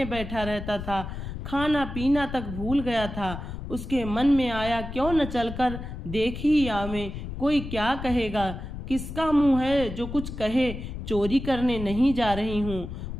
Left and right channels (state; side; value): noise; left; rumble, 8 dB below the sound